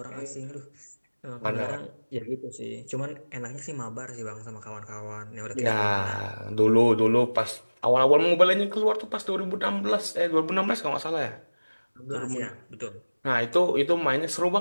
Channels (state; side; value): inverted; both; correlation -1.00